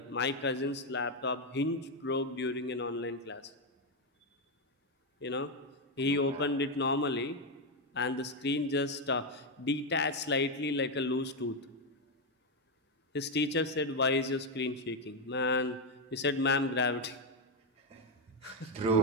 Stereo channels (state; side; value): normal; both; correlation 0.05